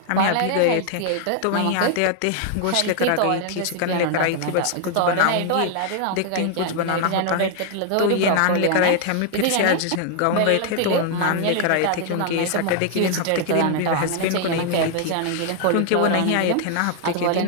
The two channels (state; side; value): different; both; correlation 0.00